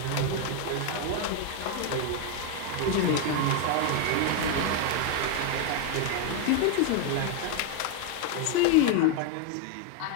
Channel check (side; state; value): both; different; correlation 0.01